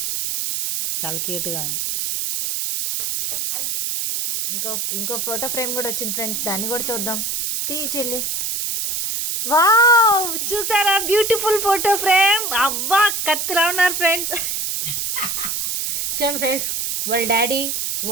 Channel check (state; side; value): noise; right; hiss, 1 dB below the sound